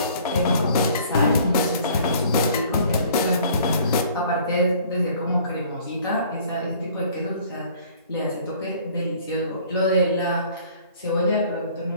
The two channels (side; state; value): both; inverted; correlation -0.54